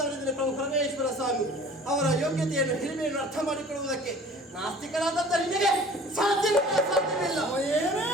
ಪ್ರಭು ಪರಮೇಶ್ವರ ಸ್ವಾಮಿ. ಅವರ ಯೋಗ್ಯತೆಯನ್ನು ಹಿರಿಮೆಯನ್ನು ಅರ್ಥ ಮಾಡಿಕೊಳ್ಳುವುದಕ್ಕೆ ನಾಸ್ತಿಕರಾದಂಥ ನಿನಗೆ ಸಾಧ್ಯವಿಲ್ಲ. ಏನೇ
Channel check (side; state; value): both; normal; correlation 0.47